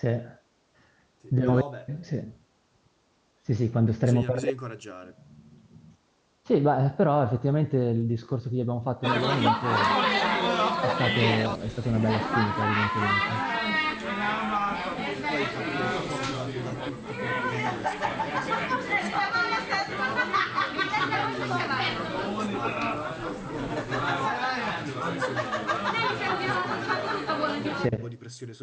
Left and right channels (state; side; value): identical; both; correlation 1.00